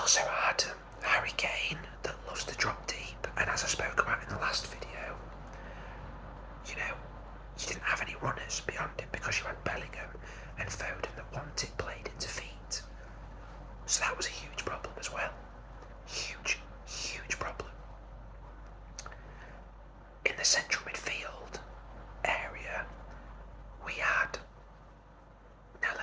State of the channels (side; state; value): both; identical; correlation 1.00